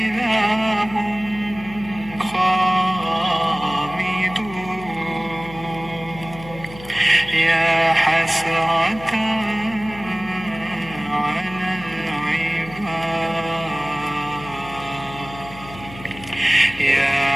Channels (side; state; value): left; noise; hum, 16 dB below the sound